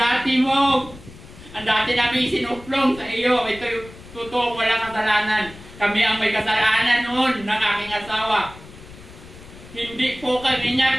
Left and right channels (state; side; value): noise; left; rumble, 18 dB below the sound